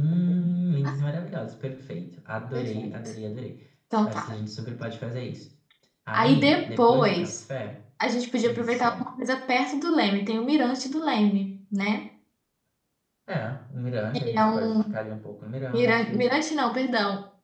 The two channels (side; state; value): both; identical; correlation 1.00